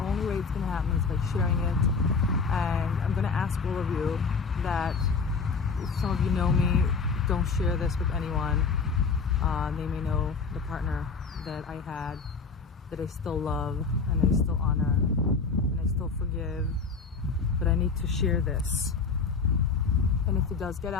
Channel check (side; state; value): right; quieter; 4.9 dB